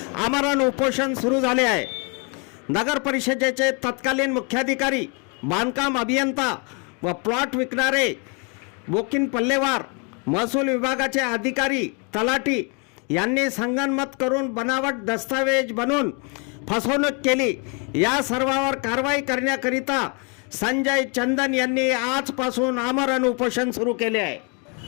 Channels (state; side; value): quieter; right; 33.7 dB